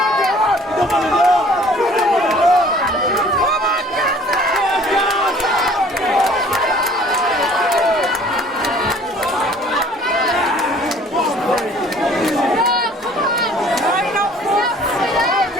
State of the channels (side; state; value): both; normal; correlation 0.53